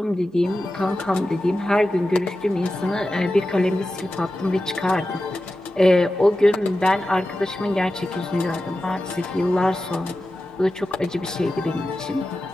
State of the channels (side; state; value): both; normal; correlation 0.93